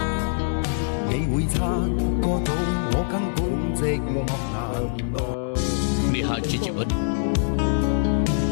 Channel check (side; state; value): right; silent; 63 dB below the other